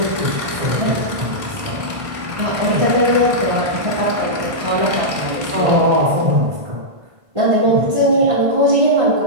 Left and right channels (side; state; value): left; late; 1.5 ms